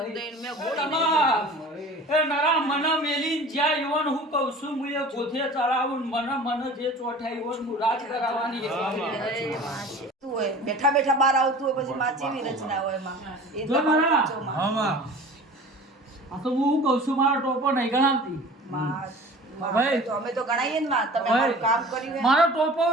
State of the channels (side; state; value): both; normal; correlation 0.42